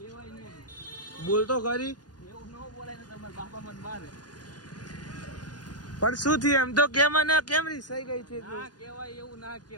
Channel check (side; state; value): right; late; 0.69 ms